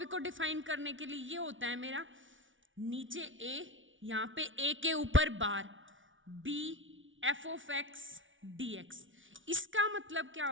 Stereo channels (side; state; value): left; late; 0.56 ms